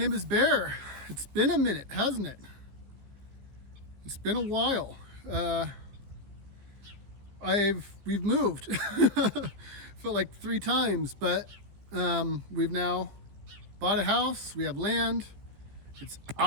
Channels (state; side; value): late; left; 15 ms